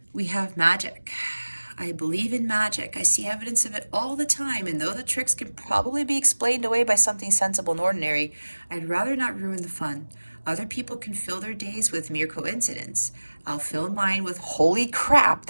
We have magic. I believe in magic. I see evidence of it all the time, and though the tricks can probably be explained away by something sensible and ordinary, I'd rather not ruin the fun. Other people can fill their days with mere coincidence. I'll fill mine with holy crap,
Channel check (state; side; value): inverted; both; correlation -1.00